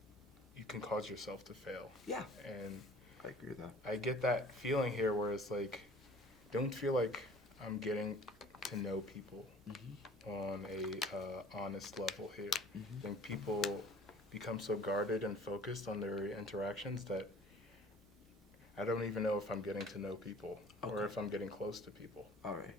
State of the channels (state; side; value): normal; both; correlation 0.50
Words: you can cause yourself to fail. Yeah, And I agree with that. I get that feeling here where it's like, don't feel like I'm getting to know people on a honest level here. I think people become so guarded and focused on their interactions that I don't even know if I'm getting to know people or if I'm getting close to people. All right.